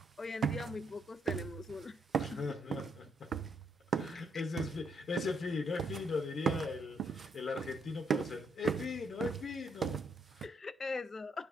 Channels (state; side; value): normal; both; correlation 0.74